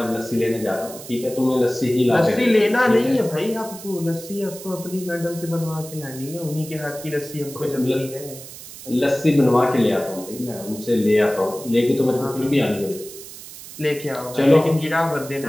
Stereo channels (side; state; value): right; noise; hiss, 14 dB below the sound